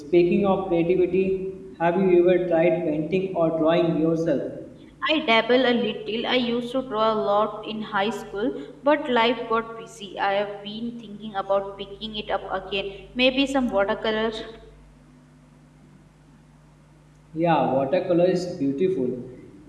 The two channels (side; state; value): both; identical; correlation 1.00